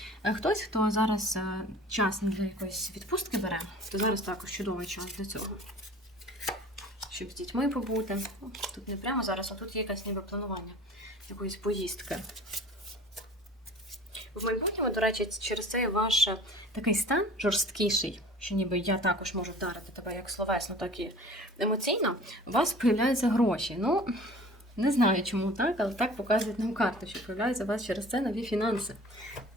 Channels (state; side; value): normal; both; correlation 0.44